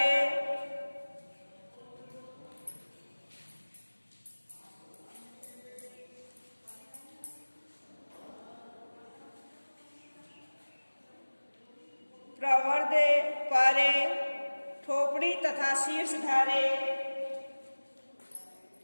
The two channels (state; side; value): inverted; both; correlation -1.00